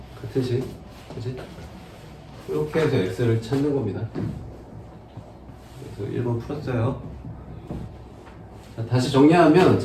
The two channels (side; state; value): both; identical; correlation 1.00